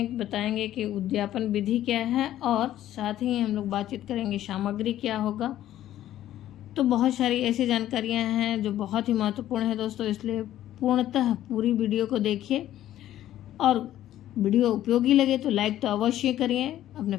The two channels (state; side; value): quieter; right; 12.8 dB